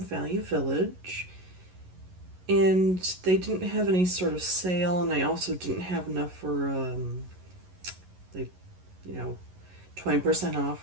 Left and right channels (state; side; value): late; left; 11 ms